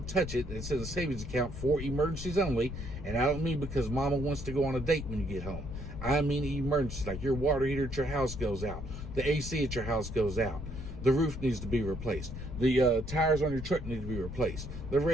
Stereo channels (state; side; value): noise; left; rumble, 8 dB below the sound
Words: touch it, it's in a savings account for emergencies only. And I don't mean because mama wants to go on a date when you get home. I mean emergencies, like your water heater at your house goes out, the AC at your house goes out, the roof needs to be replaced, the tires on your truck need to be replaced, the